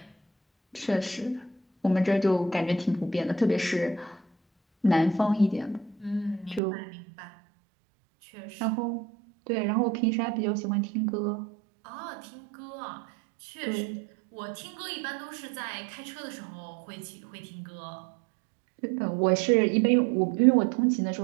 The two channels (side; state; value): left; drops out; at 6.6 s